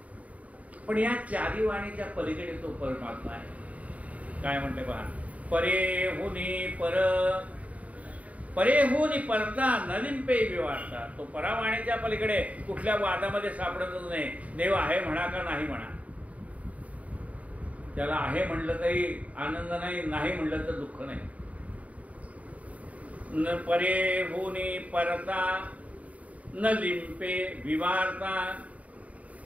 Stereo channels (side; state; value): left; late; 0.069 ms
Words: पण या 4 वाणीच्या पलीकडे तो परमात्मा आहे. काय म्हणते पहा? परे हुनी पर. परे हुनी परता नलिंपे विवारता. तो परावाणीच्या पलीकडे कुठल्या वादामध्ये सापडतच नाही. देव आहे म्हणा का नाही म्हणा, त्याला आहे म्हणलं तरी आनंद नाही, नाही म्हणलं तर दुःख नाही. न परे हुनी परता न लिंपे विवारता.